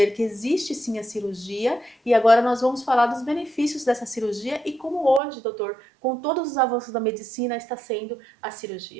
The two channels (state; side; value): drops out; left; at 5.2 s